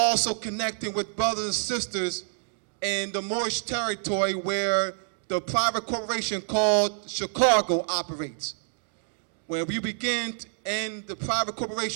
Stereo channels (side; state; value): left; silent; digital silence